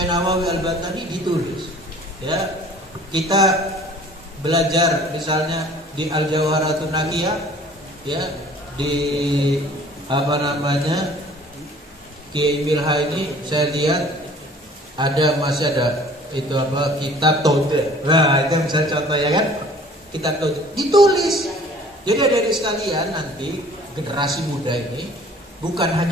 Nawawi Al-Batani ditulis. Ya, kita belajar misalnya di Al-Jawharatun Naqiyah, ya, di Kiai Milha ini saya lihat masih ada itu kitab Tauhid. Nah, itu misalnya contoh ya kan, kitab Tauhid ditulis. Jadi adik-adik sekalian, nanti generasi muda ini bukan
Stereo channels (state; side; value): normal; both; correlation 0.51